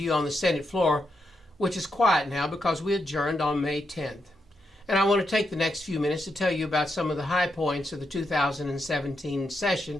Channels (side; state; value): both; normal; correlation 0.83